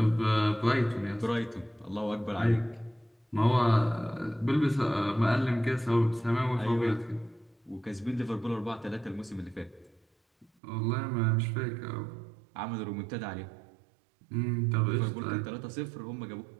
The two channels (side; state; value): left; drops out; at 10.5 s